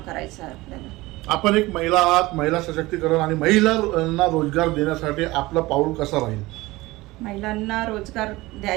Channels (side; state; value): left; quieter; 20.2 dB